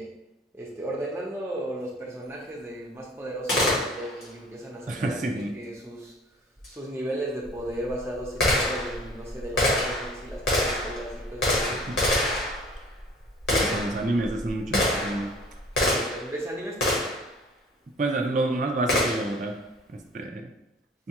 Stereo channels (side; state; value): both; normal; correlation 0.49